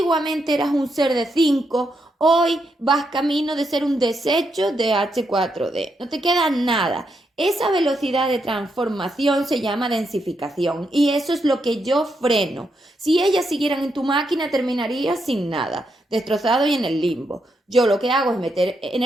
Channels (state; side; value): normal; both; correlation 0.81